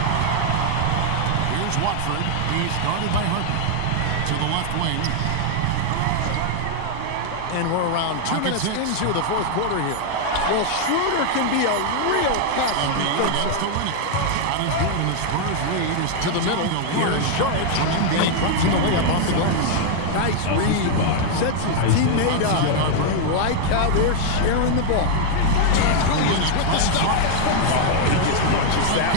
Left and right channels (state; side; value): different; both; correlation 0.00